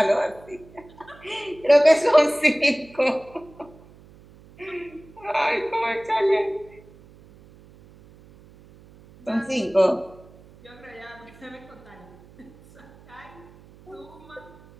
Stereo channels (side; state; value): right; noise; hum, 24 dB below the sound